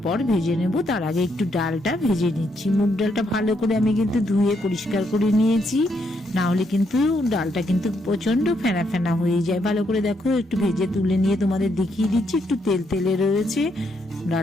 ভেজে নেব। তার আগে একটু ডালটা ভেজে নিচ্ছি। মুগ ডালটা ভালো করে আমি কিন্তু ধুয়ে পরিষ্কার করে নিয়েছি, না হলে কিন্তু ডালটা কিন্তু প্রচন্ড ফেনা ফেনা হয়ে যায়। ভালো করে দেখো, একটু ভেজে তুলে নিয়ে তোমাদের দেখিয়ে দিচ্ছি। একটু তেল তেলে রয়েছে,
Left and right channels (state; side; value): normal; both; correlation 0.76